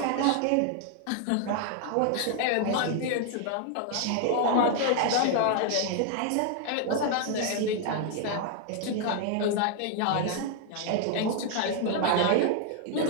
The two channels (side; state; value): both; different; correlation 0.00